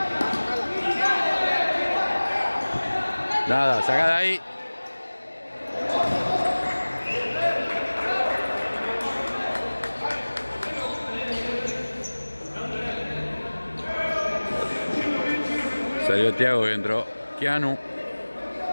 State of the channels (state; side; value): inverted; both; correlation -1.00